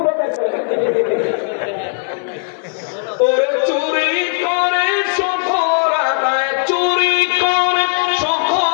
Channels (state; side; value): silent; right; 62 dB below the other